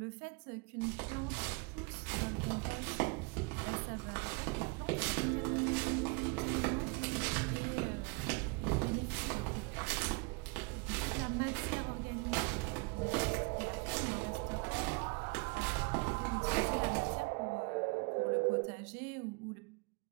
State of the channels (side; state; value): left; quieter; 30.1 dB